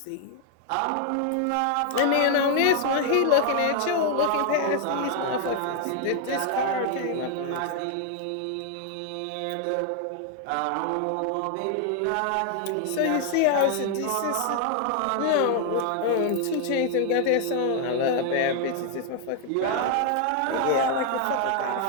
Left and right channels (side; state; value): both; different; correlation 0.00